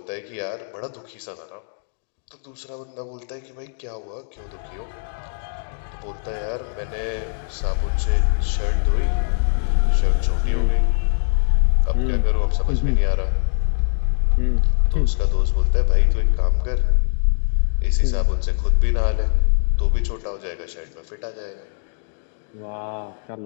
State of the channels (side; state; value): right; silent; digital silence